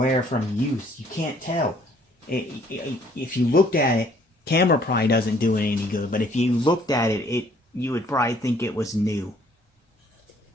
from use. You can't tell. If you looked at it, camera probably doesn't do it any good, but if you looked at it, you would probably think it was new.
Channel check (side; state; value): both; normal; correlation 0.61